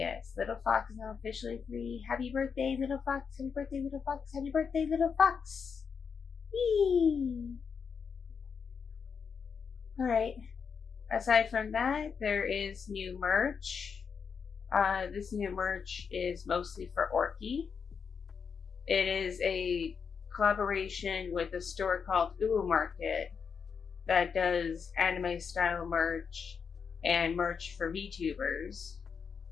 little fox is now officially 3. Happy birthday, little fox! Happy birthday, little fox! Happy birthday, little fox! Yee! Alright. Aside from that, there is new merch. This new merch is mostly for Orky. It is a collaboration with a store called Market that does anime style merch and merch for VTubers.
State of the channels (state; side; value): quieter; right; 6.2 dB